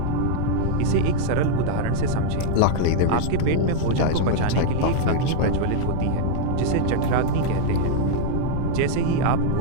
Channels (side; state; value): both; different; correlation -0.01